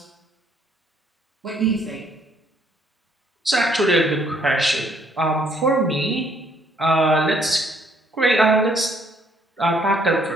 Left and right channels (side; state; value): both; normal; correlation 0.66